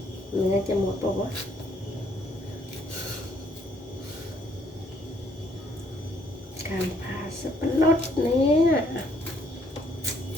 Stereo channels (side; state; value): both; normal; correlation 0.67